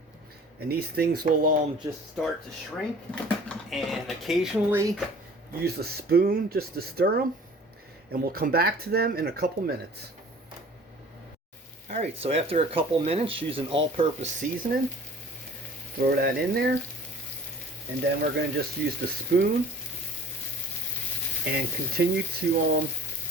and these things will just start to shrink, and occasionally use a spoon just to stir them, and we'll come back to them in a couple minutes. Alright, so after a couple minutes, use an all-purpose seasoning. Throw that in there, and then we're going to just use the spoon and continue to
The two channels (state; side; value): normal; both; correlation 0.47